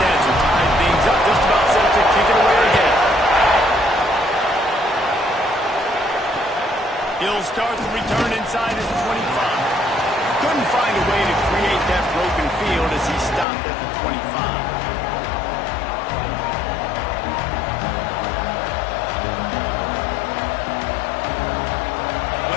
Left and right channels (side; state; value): right; drops out; at 13.5 s